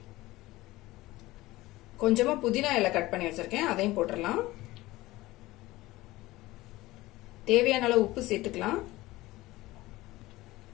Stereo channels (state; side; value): quieter; right; 18.6 dB